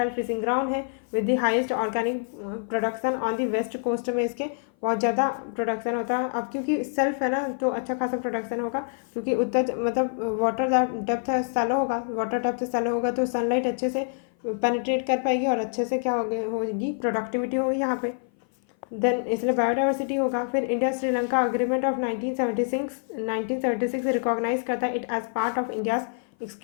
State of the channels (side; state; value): right; silent; 57 dB below the other